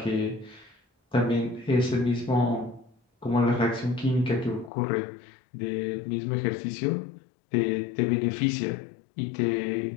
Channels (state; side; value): drops out; right; at 4.7 s